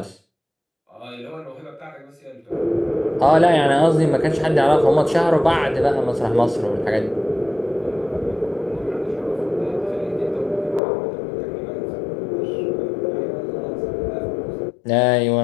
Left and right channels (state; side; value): drops out; right; at 10.8 s